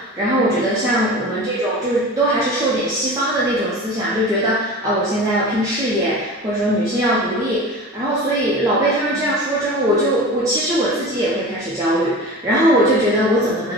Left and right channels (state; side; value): normal; both; correlation 0.34